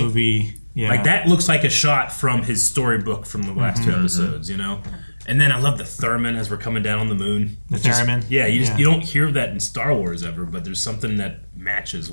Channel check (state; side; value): inverted; both; correlation -1.00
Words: Yeah, like that looks like a shot from his storybook from the last two episodes. You know. And then I love the theremin as we're coming down on the moon. The theremin? Yeah, you don't hear that in Star Wars ever, but there's something that matches